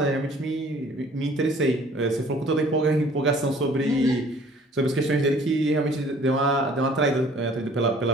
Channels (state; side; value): normal; both; correlation 0.54